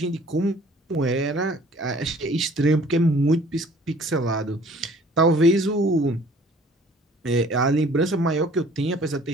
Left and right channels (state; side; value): normal; both; correlation 0.53